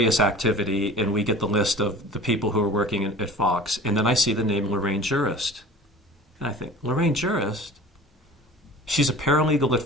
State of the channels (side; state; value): both; normal; correlation 0.41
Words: activity, and we get the list of the people who are working at Fox, and then I see the name Lorraine Jurist. And I think, Lorraine Jurist? She's a paralegal at